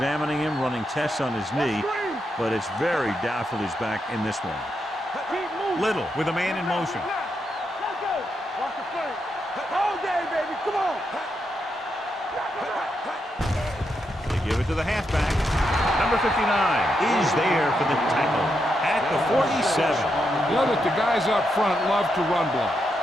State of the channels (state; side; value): normal; both; correlation 0.83